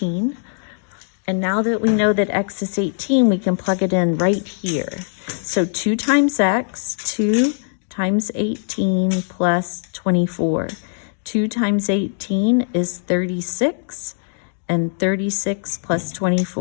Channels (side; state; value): right; silent; digital silence